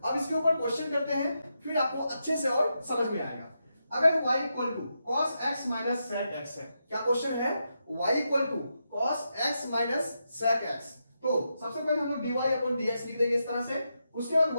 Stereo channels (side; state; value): both; inverted; correlation -0.85